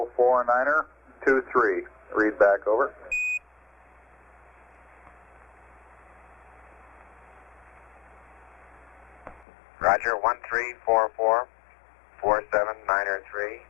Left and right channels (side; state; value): right; drops out; at 9.5 s